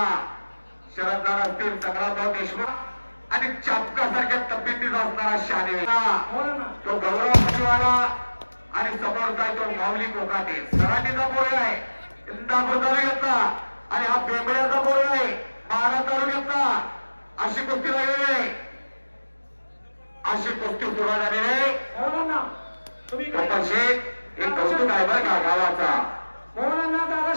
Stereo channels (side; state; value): both; inverted; correlation -1.00